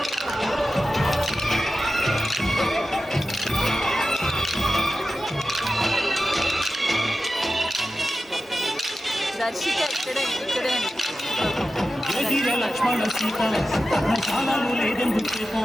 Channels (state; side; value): normal; both; correlation 0.93